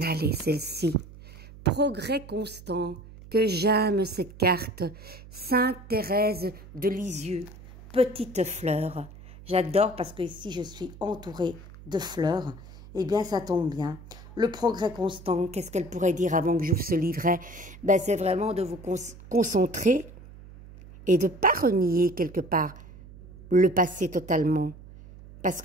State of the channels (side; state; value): right; noise; hum, 18 dB below the sound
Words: Allez, celle-ci. Progrès constant. Que j'aime cette carte. Sainte Thérèse de Lisieux. Petite fleur. J'adore parce que ici je suis entourée de fleurs. Eh bien, ça tombe bien. Le progrès constant, qu'est-ce qu'elle pourrait dire avant que j'ouvre ce livret? Ben, c'est vraiment de vous concentrer et de ne pas renier quelque part le passé totalement. Parce